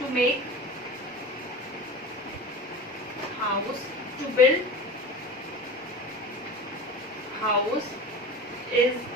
make house, to build house is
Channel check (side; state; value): both; normal; correlation 0.33